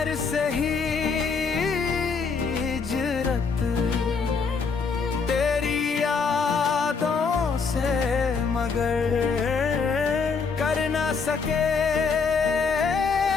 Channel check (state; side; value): quieter; right; 5.1 dB